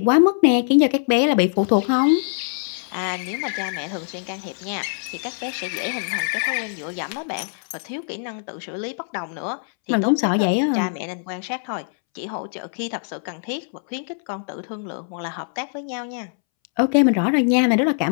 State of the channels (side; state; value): right; silent; 64 dB below the other